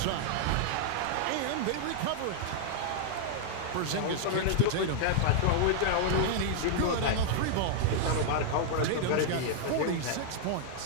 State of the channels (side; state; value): both; different; correlation 0.00